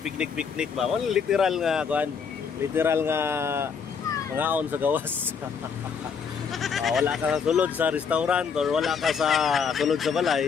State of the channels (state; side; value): quieter; right; 6.2 dB